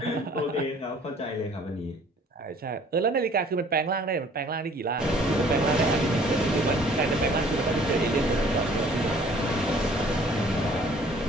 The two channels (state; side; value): normal; both; correlation 0.55